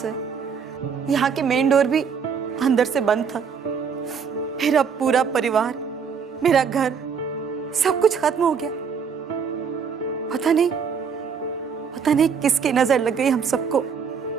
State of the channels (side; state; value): left; quieter; 6.5 dB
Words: यहाँ के मेन डोर भी अंदर से बंद था। फिर अब पूरा परिवार मेरा घर, सब कुछ खत्म हो गया। पता नहीं किसकी नजर लग गई हम सबको।